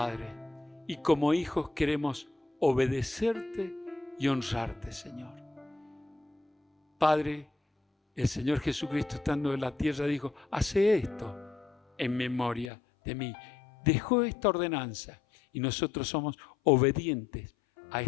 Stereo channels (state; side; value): drops out; right; at 12.7 s